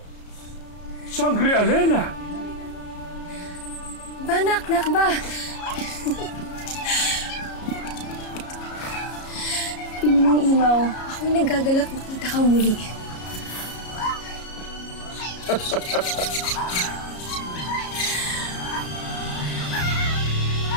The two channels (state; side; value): late; right; 33 ms